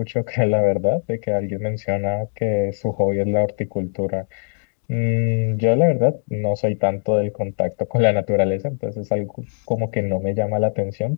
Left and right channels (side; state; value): right; silent; digital silence